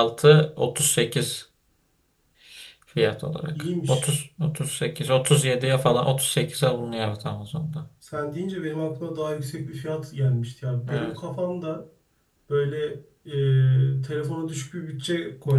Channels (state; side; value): identical; both; correlation 1.00